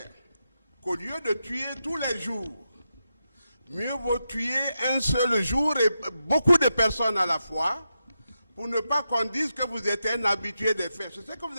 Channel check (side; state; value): both; inverted; correlation -0.87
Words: qu'au lieu de tuer tous les jours, mieux vaut tuer un seul jour et beaucoup de personnes à la fois pour ne pas qu'on dise que vous êtes un habitué des faits. C'est ce que vous